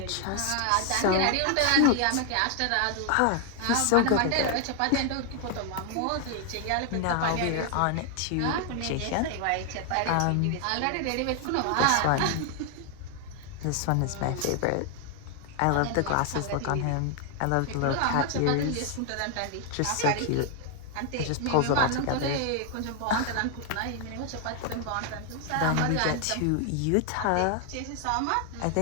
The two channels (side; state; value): both; different; correlation 0.00